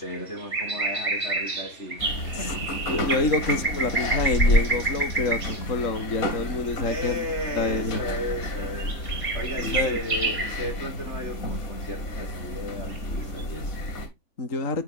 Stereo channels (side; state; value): right; late; 3.5 ms